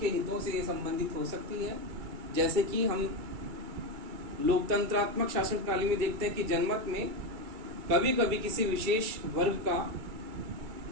के हितों से ये संबंधित हो सकती है। जैसे कि हम लोकतंत्रात्मक शासन प्रणाली में देखते हैं कि जनमत में कभी कभी किसी विशेष वर्ग का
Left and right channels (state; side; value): late; left; 2.3 ms